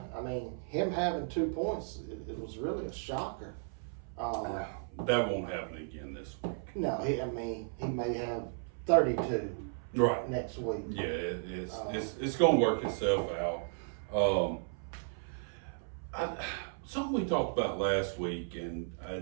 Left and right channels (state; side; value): silent; left; 55 dB below the other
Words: I mean, him having 2 points, it was really a shocker. That won't happen again this week. No, he may have 32 Right. next week. Yeah, it's going to work itself out. Something we talked about last week, and